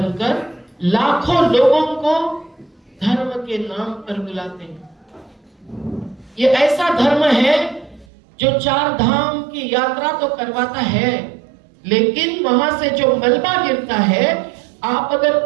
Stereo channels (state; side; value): drops out; left; at 8.1 s